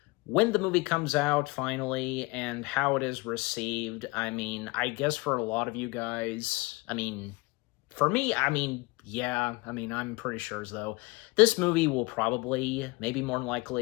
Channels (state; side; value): quieter; right; 24.5 dB